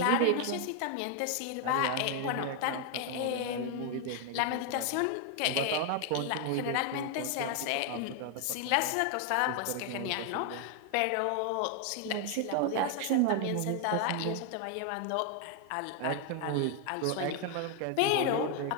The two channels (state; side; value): different; both; correlation 0.00